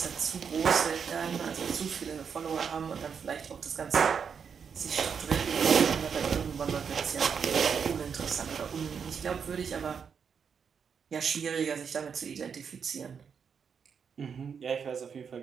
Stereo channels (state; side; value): quieter; left; 6.7 dB